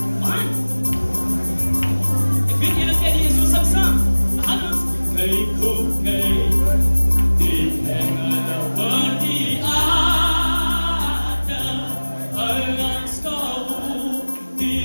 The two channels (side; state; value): both; inverted; correlation -1.00